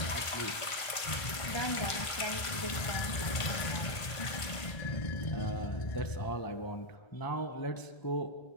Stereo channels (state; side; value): late; right; 1.5 ms